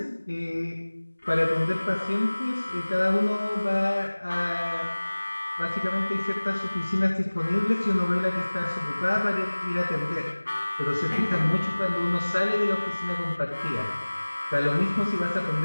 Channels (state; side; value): inverted; both; correlation -1.00